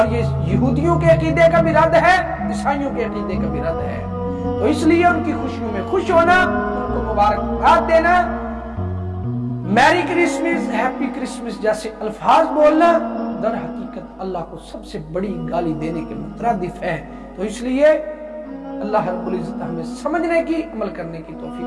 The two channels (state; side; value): identical; both; correlation 1.00